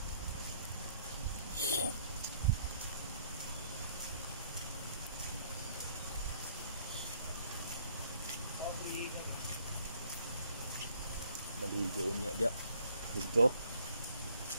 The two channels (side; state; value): both; inverted; correlation -0.62